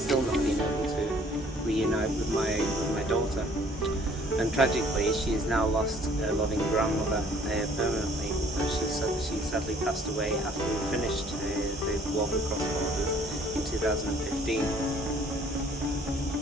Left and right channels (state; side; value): normal; both; correlation 0.57